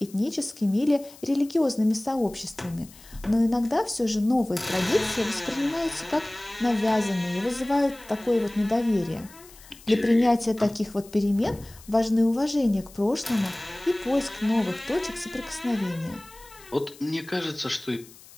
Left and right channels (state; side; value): noise; left; hiss, 22 dB below the sound